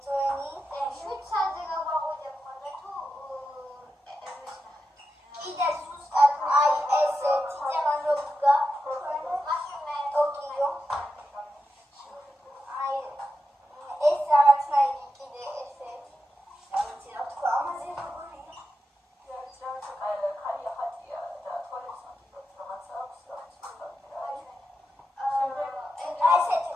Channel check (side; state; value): both; normal; correlation 0.88